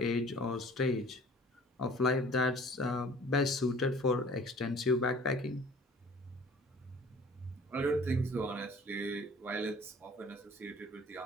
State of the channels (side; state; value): both; normal; correlation 0.50